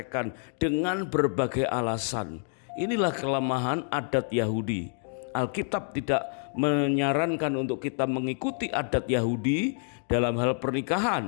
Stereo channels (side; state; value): right; silent; 55 dB below the other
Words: dengan berbagai alasan. Inilah kelemahan adat Yahudi. Alkitab tidak menyarankan untuk kita mengikuti adat Yahudi dalam hal